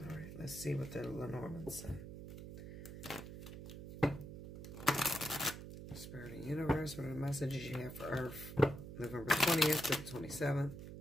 let's see what the Lenormands say. Spirit and Universe, what are the messages you have for Earth? November 20th to the 27th.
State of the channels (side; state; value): right; noise; hum, 10 dB below the sound